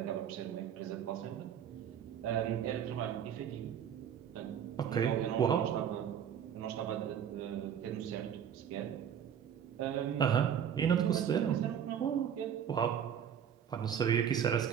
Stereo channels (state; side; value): quieter; left; 8.7 dB